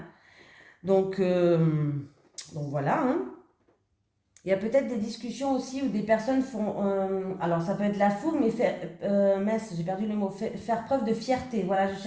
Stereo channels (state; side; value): identical; both; correlation 1.00